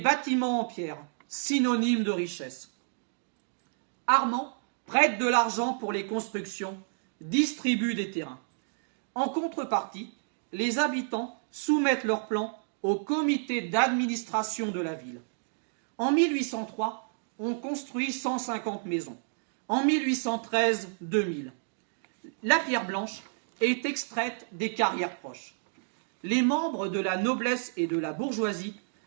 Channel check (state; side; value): silent; left; digital silence